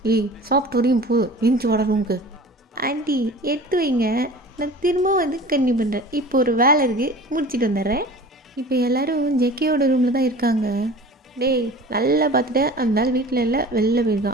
சாப்பிட்டு வரையும் போ, இன்ச்சு வாட ரூமுக்கு. ஆண்டி எடுத்து வைங்க, நான் திரும்ப கன்னியூ பண்ணுறேன், இப்போ ஒரு வேலை இருக்குது, முடிச்சுட்டு வந்துடுறேன். இப்போ எல்லோரும் ஜெகேயோட ரூமில் தான் இருக்காங்க. டேய் நல்லா பார்த்துட்டு, அந்த நாள் வீட்டில் இல்லை, வெளில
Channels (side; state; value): both; normal; correlation 0.40